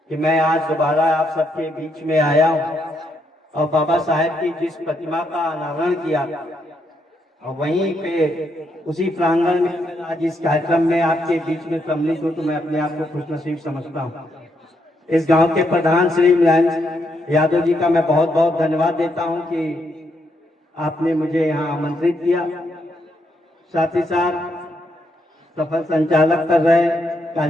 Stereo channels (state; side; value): normal; both; correlation 0.77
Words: कि मैं आज दोबारा आप सबके बीच में आया हूँ और बाबा साहब की जिस प्रतिमा का अनावरण किया और वहीं पे उसी प्रांगण में आज इस कार्यक्रम में आपके बीच में सम्मिलित हूँ, तो मैं अपने आप को खुशनसीब समझता हूँ। इस गांव के प्रधान श्री मुलायम यादव जी का मैं बहुत बहुत धन्यवाद देता हूँ कि आपने मुझे यहाँ आमंत्रित किया। साथ ही साथ सफल संचालक कर रहे,